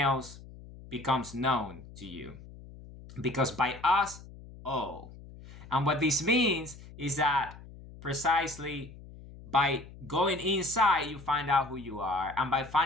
becomes known to you. Because by us, oh. And what this means is that precisely by going inside, you find out who you are. And by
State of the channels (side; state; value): left; noise; hum, 17 dB below the sound